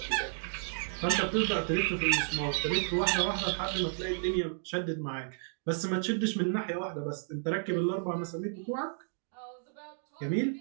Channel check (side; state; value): left; silent; digital silence